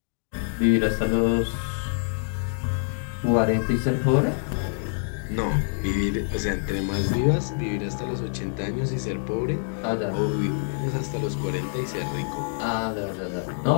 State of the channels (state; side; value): silent; right; digital silence